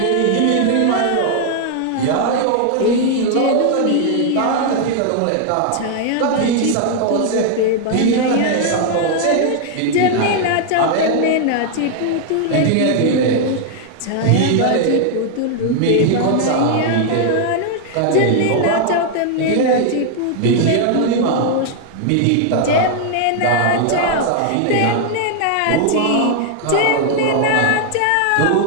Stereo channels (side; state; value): both; different; correlation 0.00